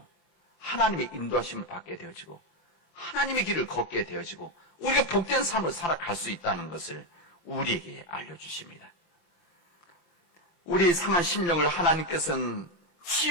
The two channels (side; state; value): right; late; 26 ms